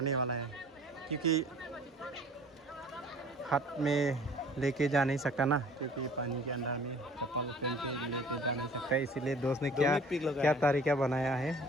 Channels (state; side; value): normal; both; correlation 0.49